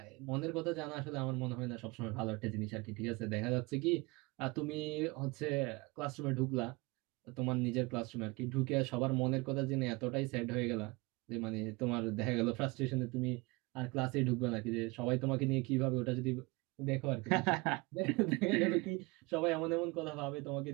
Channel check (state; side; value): quieter; left; 25.4 dB